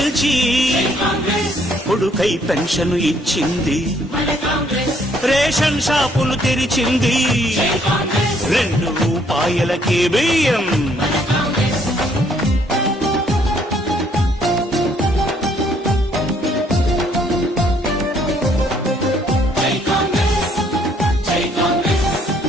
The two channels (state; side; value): normal; both; correlation 0.66